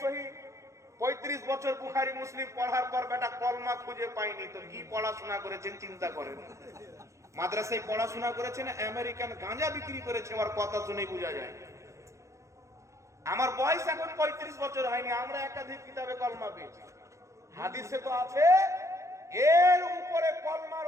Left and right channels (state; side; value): late; left; 0.15 ms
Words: সহি 35 বছর বুখারী মুসলিম পড়ার পর বেটা কলমা খুঁজে পায়নি, তো কি পড়াশোনা করেছেন চিন্তা করেন। মাদ্রাসায় পড়াশোনা করেছেন, আমেরিকান গাঁজা বিক্রি করেছে, ওর কথা শুনেই বোঝা যায়। আমার বয়স এখন 35 বছর হয়নি, আমরা একাধিক কিতাবে কলমা পেয়েছি। হাদিসে তো আছে এর উপরে কলমার